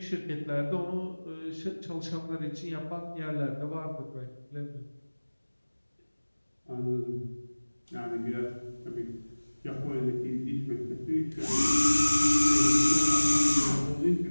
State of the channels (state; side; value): inverted; both; correlation -1.00